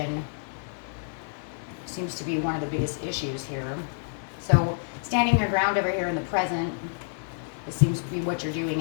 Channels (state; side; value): silent; right; digital silence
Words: seems to be one of the biggest issues here. So standing your ground over here in the present, it seems to be what you're doing